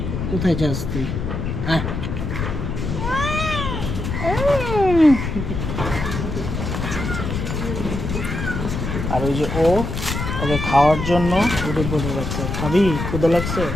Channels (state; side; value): noise; left; rumble, 4 dB below the sound